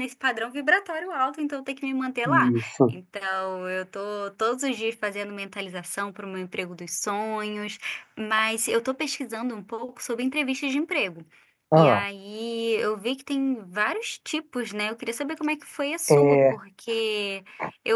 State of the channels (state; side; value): identical; both; correlation 1.00